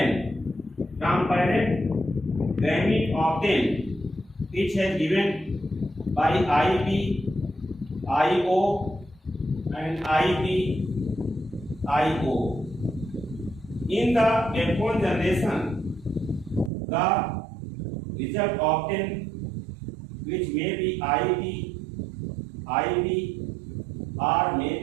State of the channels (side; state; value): left; drops out; at 16.7 s